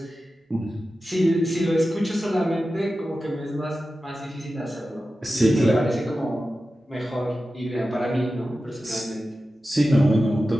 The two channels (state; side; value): normal; both; correlation 0.93